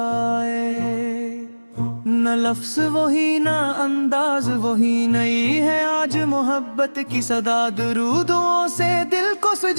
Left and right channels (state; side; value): inverted; both; correlation -1.00